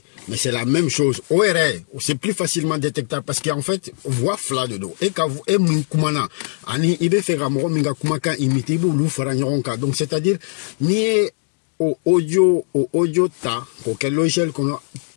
mais c'est la même chose ORE c'est plus facilement détectable parce qu'en fait voix fla de dos et ka e mun kumana ani ibe faire moro minga kuma kan imité bu lu fara nyoronka donc c'est-à-dire ni au audio ta quel logiciel qu'on a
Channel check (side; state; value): right; silent; 66 dB below the other